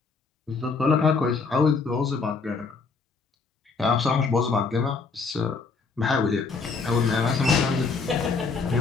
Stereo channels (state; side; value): quieter; right; 4.5 dB